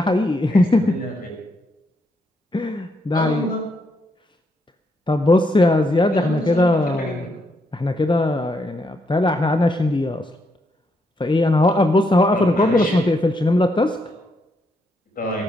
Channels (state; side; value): normal; both; correlation 0.77